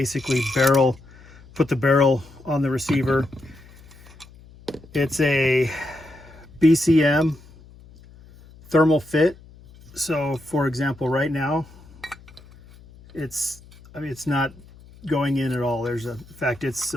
put the barrel on the receiver. It's a BCM thermal fit. So for example, right now, it's not going in at all. In fact, it's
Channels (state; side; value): noise; left; hum, 23 dB below the sound